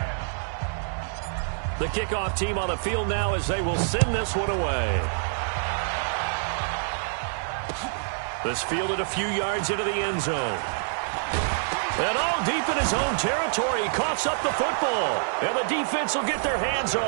The kickoff team on the field now as they will send this one away. This fielded a few yards into the end zone. And all deep in his own territory, he coughs up the football. And the defense will get their hands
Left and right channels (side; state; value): left; silent; 58 dB below the other